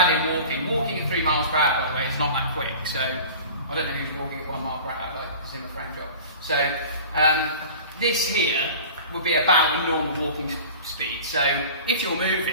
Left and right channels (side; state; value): both; inverted; correlation -0.39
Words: in walking. Walking at 3 miles per hour, by the way, is not that quick. So I don't know who's walking at 1 mile per hour, it's in a frame job. So this here would be about a normal walking speed. So if you're